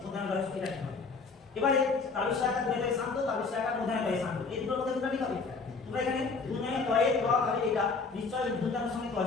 মধ্যাহ্ন রয়েছে, এটা ঠিক হবে। এবারে তাবিজ আকার দুনয়টাই শান্ত, তাবিজ আকার মধ্যাহ্নটাই শান্ত, এই দুটোর মধ্যে কোনটা ঠিক হবে? তোমরা এখানে দুনয় তয়ে ড হবে, এটা নিশ্চয় মধ্যাহ্নের সঙ্গে ড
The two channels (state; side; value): quieter; right; 4.4 dB